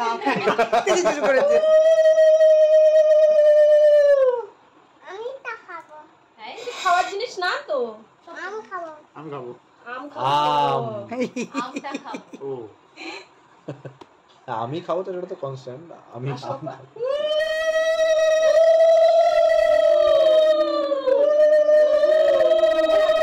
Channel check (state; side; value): identical; both; correlation 1.00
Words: শুরু করেছে। খাওয়ার জিনিস না তো, আমি খাবো আম খাবো। ও আমি খাবো তো, এটা তো কনস্ট্যান্ট। আমি